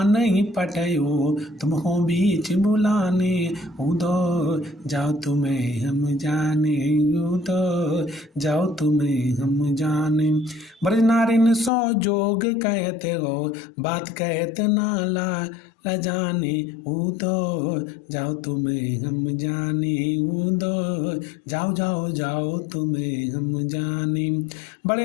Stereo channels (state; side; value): drops out; right; at 11.7 s